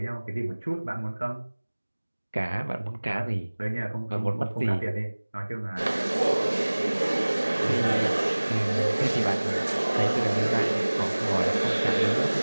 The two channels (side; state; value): both; inverted; correlation -1.00